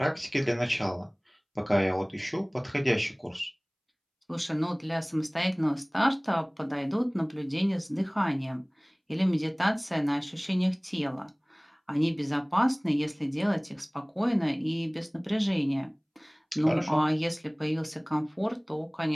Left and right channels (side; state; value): both; identical; correlation 1.00